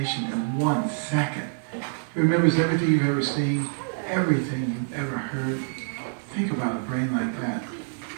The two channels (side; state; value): left; silent; digital silence